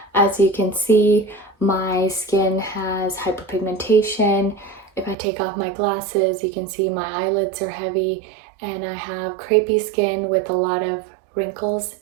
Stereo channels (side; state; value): left; drops out; at 5.2 s